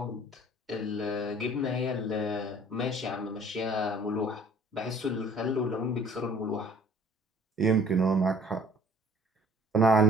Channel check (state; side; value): normal; both; correlation 0.54